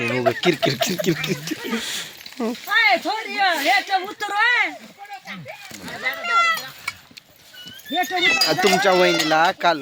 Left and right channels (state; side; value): identical; both; correlation 1.00